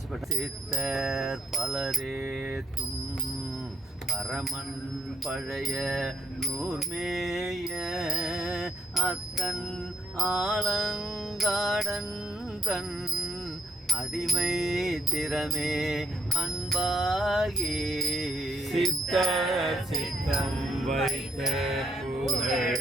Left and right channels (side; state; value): both; normal; correlation 0.70